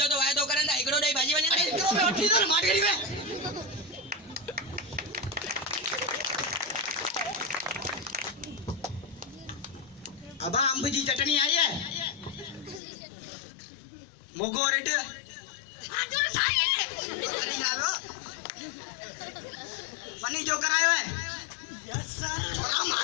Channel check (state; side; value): drops out; right; at 12.8 s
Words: तो वायदो करन ता एकड़ो दई भाजी वने अरे इतरो पे वठी दो मार करी वे अब अंब जी चटनी आई है मोगो रेट आजो साई फनी जावे फनी जो करायो है यस सर छोरा